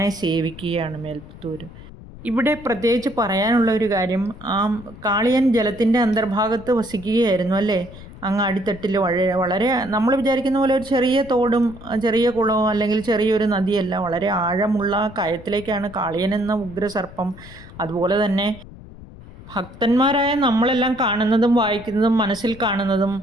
സേവിക്കുകയാണ് മേൽപ്പത്തൂർ. ഇവിടെ പ്രത്യേകിച്ച് പറയാനുള്ള ഒരു കാര്യം, ആ കാളിയൻ ജലത്തിൻ്റെ അന്തർഭാഗത്ത് വസിക്കുകയായിരുന്നു അല്ലേ. അങ്ങ് അടിത്തട്ടിൽ വളരെ നമ്മൾ വിചാരിക്കുന്ന പോലെ ഒരു ചെറിയ തോടും ചെറിയ കുളവും അല്ലെങ്കിൽ ചെറിയൊരു നദിയല്ല, വളരെ ആഴമുള്ള കയത്തിലേക്കാണ് കാളിയൻ എന്ന ഉഗ്രസർപ്പം. അതുപോലെ തന്നെ ഭക്തന്മാരായ നമ്മളെല്ലാം കാണുന്നതും വായിക്കുന്നതും മനസ്സിൽ കാണുന്നതും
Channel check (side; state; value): left; noise; rumble, 17 dB below the sound